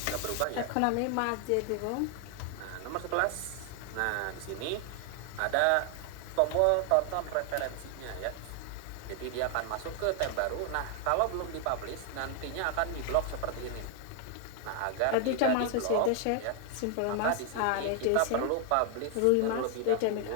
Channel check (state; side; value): different; both; correlation 0.00